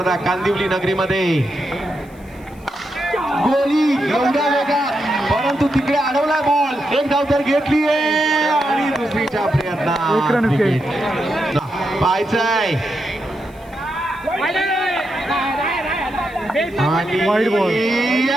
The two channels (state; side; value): noise; left; hiss, 29 dB below the sound